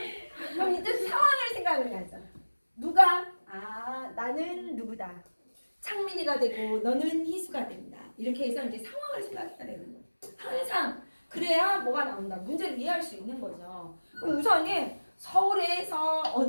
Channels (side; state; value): both; inverted; correlation -1.00